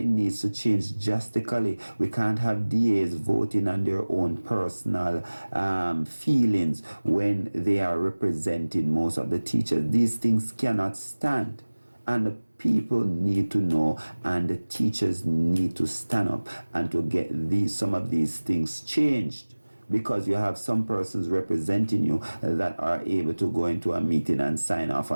needs to change drastically. We can't have DAs voting on their own personal feelings when they are representing most of the teachers. These things cannot stand. And the people need to know, and the teachers need to stand up and to get some of these things changed. Because you have some persons representing you that are able to go into a meeting and sign off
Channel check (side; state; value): both; inverted; correlation -1.00